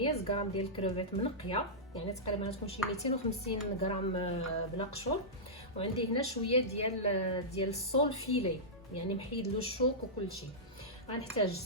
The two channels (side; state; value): both; normal; correlation -0.14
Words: غرام ديال الكروفيت منقيه، يعني تقريبا غتكون شي 250 غرام بلا قشور. وعندي هنا شويه ديال الصول فيلي، يعني محيد له الشوك وكل شيء. غنحتاج